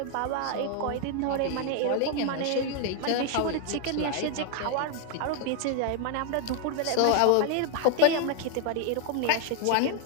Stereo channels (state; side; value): different; both; correlation 0.00